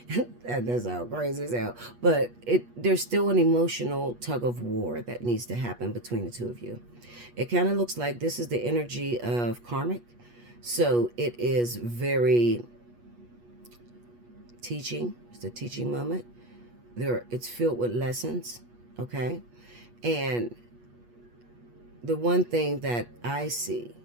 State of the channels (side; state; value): left; late; 8.3 ms